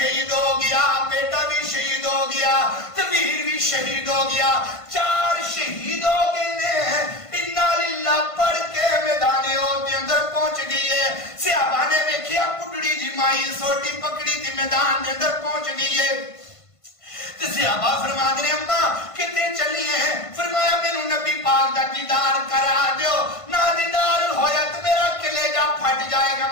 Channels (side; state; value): right; late; 1.5 ms